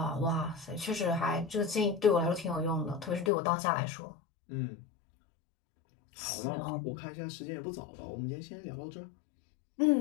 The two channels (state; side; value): drops out; right; at 3.3 s